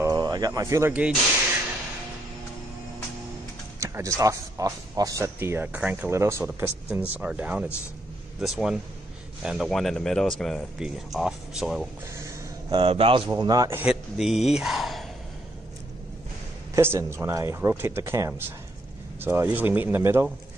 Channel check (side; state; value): both; normal; correlation 0.74